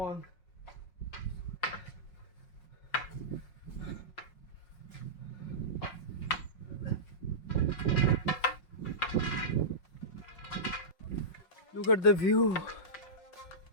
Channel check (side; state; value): right; late; 5.5 ms